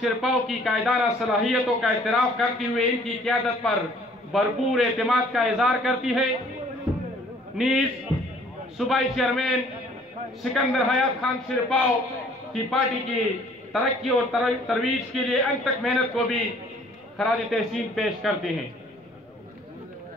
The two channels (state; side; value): normal; both; correlation 0.57